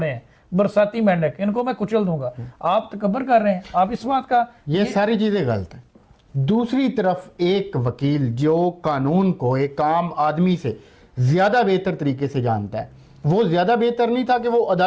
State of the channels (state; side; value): identical; both; correlation 1.00